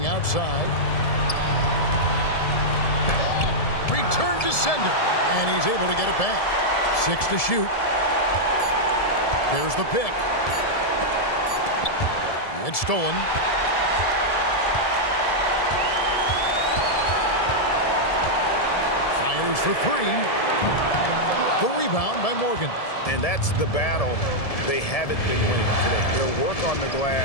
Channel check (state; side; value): late; right; 1.7 ms